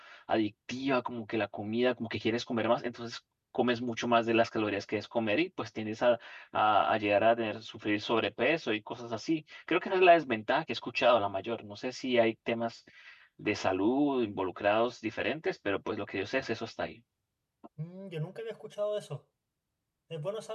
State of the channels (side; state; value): both; identical; correlation 1.00